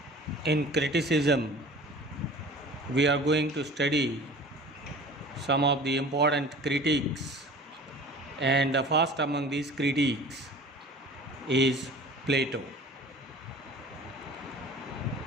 in criticism, we are going to study some of the important critiques, and the first among these critiques is Plato.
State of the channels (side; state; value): both; normal; correlation 0.43